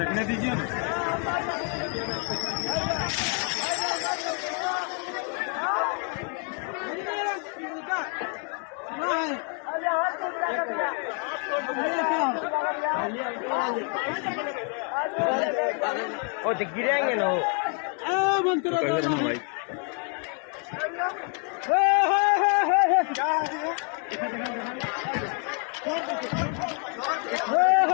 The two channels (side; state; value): right; quieter; 39.9 dB